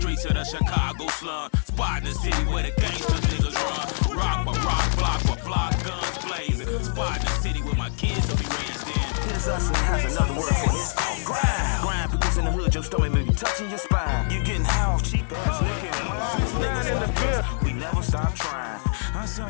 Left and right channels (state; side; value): silent; right; digital silence